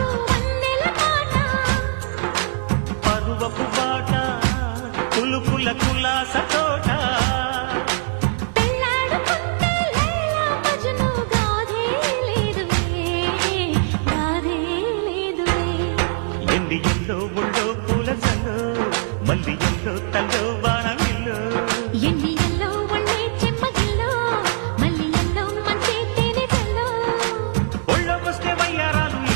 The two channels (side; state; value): left; silent; 65 dB below the other